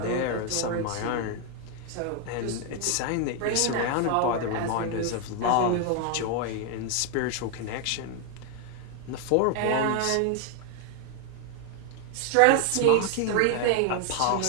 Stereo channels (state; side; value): different; both; correlation 0.00